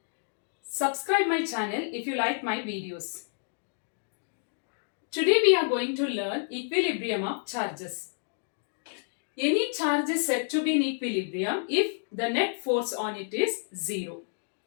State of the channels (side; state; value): right; silent; digital silence